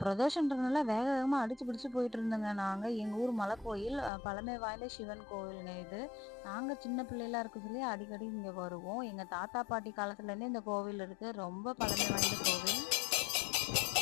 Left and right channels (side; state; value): right; drops out; at 4.1 s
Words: பிரதோஷன்றதுனால வேக வேகமா அடிச்சு பிடிச்சு போயிட்டு இருந்தோங்க. நாங்க எங்க ஊர் மலை கோயில் பழமை வாய்ந்த சிவன் கோவிலுங்க இது. நாங்க சின்ன பிள்ளைகளா இருக்க சொல்லி அடிக்கடி இங்க வருவோம். எங்க தாத்தா பாட்டி காலத்துல இருந்தே இந்த கோவில் இருக்கு. ரொம்ப பழமை வாய்ந்த கோவில்.